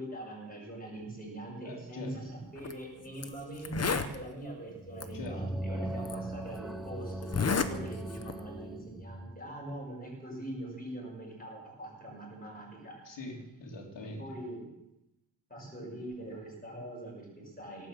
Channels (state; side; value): normal; both; correlation 0.40